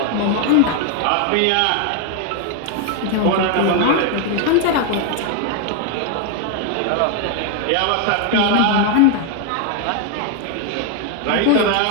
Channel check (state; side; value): different; both; correlation 0.01